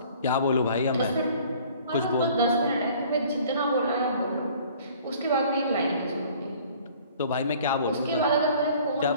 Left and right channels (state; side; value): inverted; both; correlation -0.52